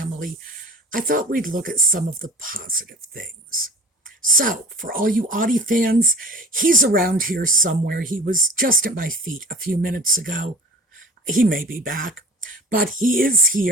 I thought we'd look at some of the positive things. So, for all you Audie fans, he's around here somewhere. He was just at my feet a few minutes ago. He may be back, but he is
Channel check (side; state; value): both; normal; correlation 0.40